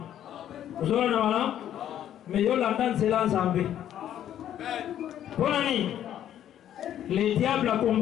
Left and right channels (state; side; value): quieter; right; 10.9 dB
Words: Ozona na malamu, mais yo landa nzela nzambe. Bonani. Le diable a